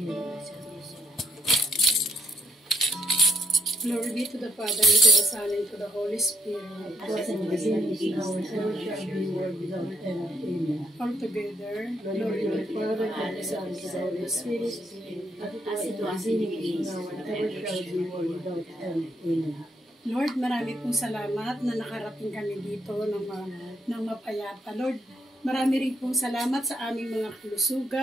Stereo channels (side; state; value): both; normal; correlation 0.74